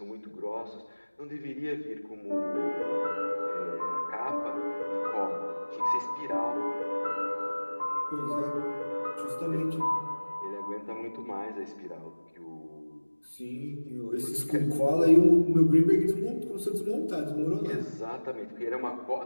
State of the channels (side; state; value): both; inverted; correlation -1.00